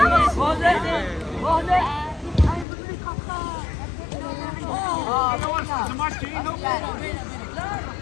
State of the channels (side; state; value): right; drops out; at 2.7 s